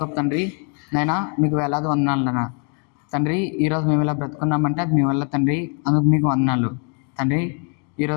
తండ్రి, నైనా మీకు వేలాది వందనాలు నాన్న తండ్రి. ఈరోజు మేము ఇలా బ్రతుకున్నామంటే అది మీ వల్ల తండ్రి, అందుకు మీకు వందనాలు తండ్రి.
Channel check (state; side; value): quieter; right; 39.8 dB